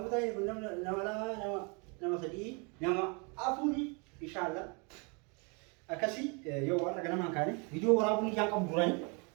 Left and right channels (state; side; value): quieter; left; 32.8 dB